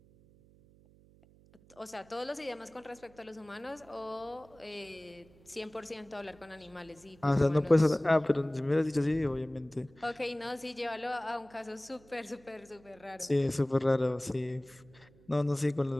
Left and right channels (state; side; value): noise; right; hum, 27 dB below the sound